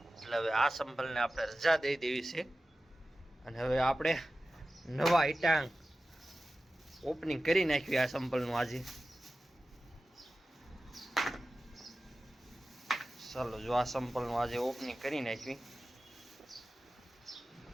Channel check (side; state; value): both; normal; correlation 0.95